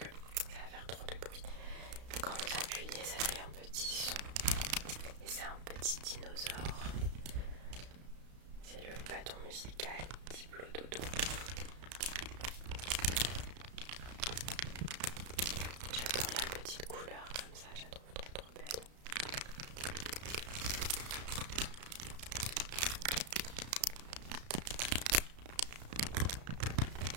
ça va faire trop de bruit. Quand vous appuyez, ça fait un petit son et c'est un petit dinosaure. C'est le bâton musical Diplo Dodo. J'adore la petite couleur comme ça, je la trouve trop belle.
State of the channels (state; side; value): late; left; 33 ms